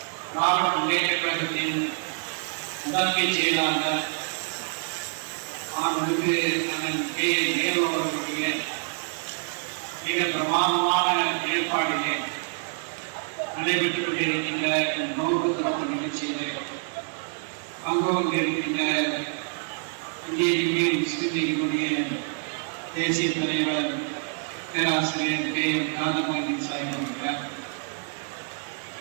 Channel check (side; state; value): left; silent; 59 dB below the other